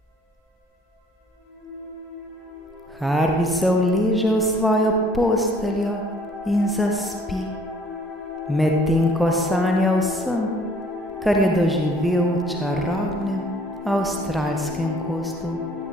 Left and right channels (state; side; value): normal; both; correlation 0.57